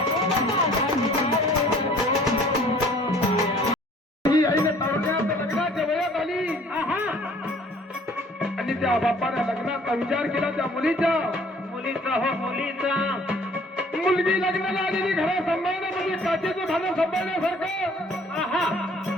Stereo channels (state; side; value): normal; both; correlation 0.55